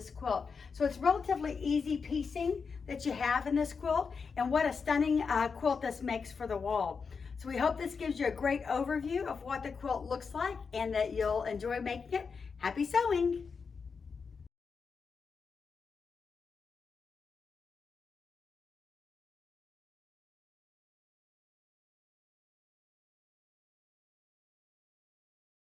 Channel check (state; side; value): quieter; right; 5.4 dB